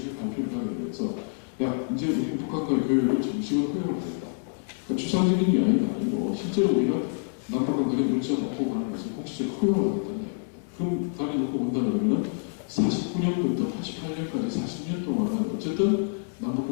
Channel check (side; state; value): right; silent; digital silence